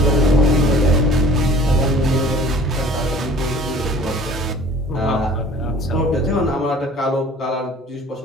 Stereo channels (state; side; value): normal; both; correlation 0.49